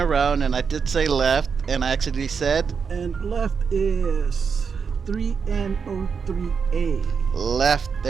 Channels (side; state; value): left; quieter; 6.0 dB